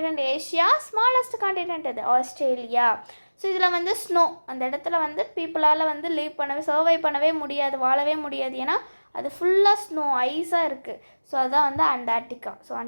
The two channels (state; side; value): inverted; both; correlation -1.00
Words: Asia, smallest continent எது, ஆஸ்திரேலியா. ஸோ இதில் வந்து ஸ்னோ, அந்த இடத்துல வந்து பீப்புளால் வந்து லீவ் பண்ணவே, சர்வை பண்ணவே முடியாது, வாழவே முடியாது, ஏன்னா அது ஃபுல்லாக ஸ்னோ, ஐஸாக இருக்குது. ஸோ அதுதான் வந்து அண்டார்டிகா. ஸோ